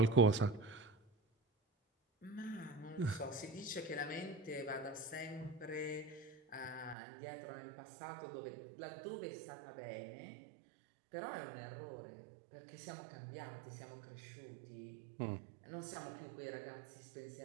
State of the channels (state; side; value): drops out; left; at 7.0 s